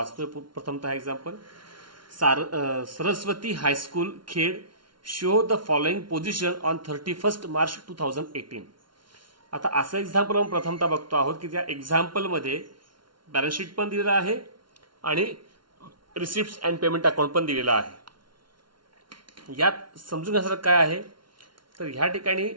प्रथमतः example. Saraswati high school Khed show the following position on 31 March 2018. आता असं एक्झाम्पल आपण प्रथमतः बघतो आहोत की त्या एक्झाम्पलमध्ये बॅलन्स शीट पण दिलेलं आहे आणि रिसिप्ट अँड पेमेंट अकाउंट पण दिलेलं आहे. यात समजून घेण्यासारखं काय आहे तर ह्या ठिकाणी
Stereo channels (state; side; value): late; left; 0.72 ms